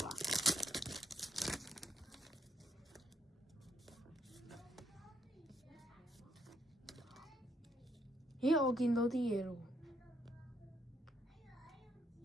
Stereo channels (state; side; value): normal; both; correlation 0.75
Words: 啦。咦，我見到啲嘢咯